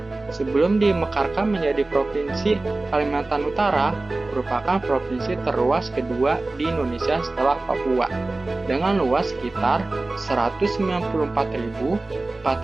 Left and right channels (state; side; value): quieter; left; 3.1 dB